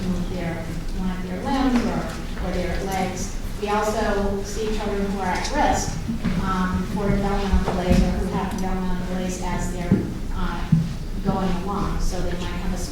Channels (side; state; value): both; identical; correlation 1.00